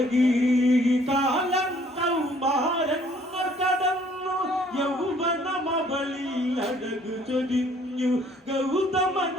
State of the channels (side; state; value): both; normal; correlation 0.60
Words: കാലം കൗമാരങ്ങൾ കടന്നു യൗവനമവളിൽ അഴകു ചൊരിഞ്ഞു